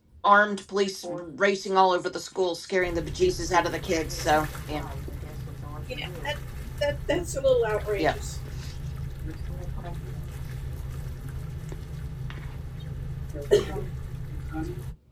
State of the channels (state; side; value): identical; both; correlation 1.00